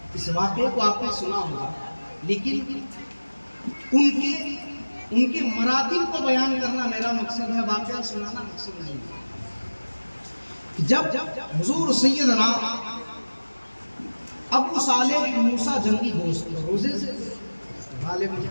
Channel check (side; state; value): both; inverted; correlation -1.00